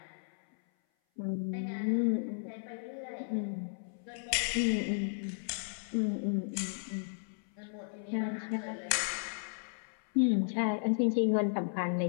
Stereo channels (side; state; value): right; silent; 55 dB below the other